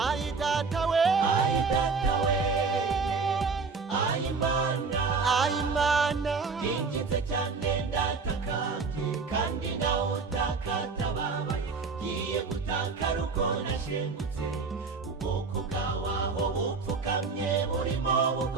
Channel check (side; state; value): left; quieter; 4.7 dB